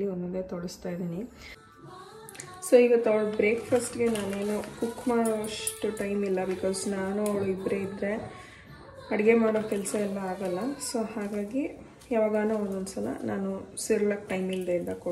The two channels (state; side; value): identical; both; correlation 1.00